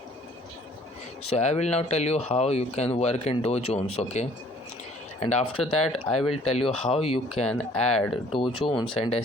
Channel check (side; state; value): both; normal; correlation 0.57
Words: So I will now tell you how you can work in Dow Jones. Okay, and after that I will tell you how you can add Dow Jones and